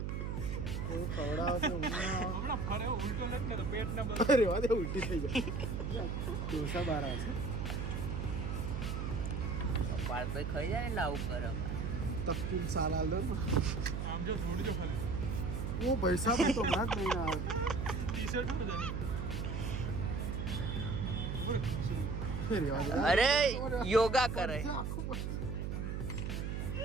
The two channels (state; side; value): noise; right; hum, 2 dB below the sound